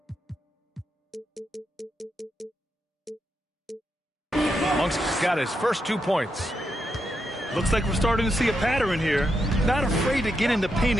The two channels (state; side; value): normal; both; correlation 0.83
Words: Monk's got his first 2 points. Looks like we're starting to see a pattern here. Not afraid to get in the paint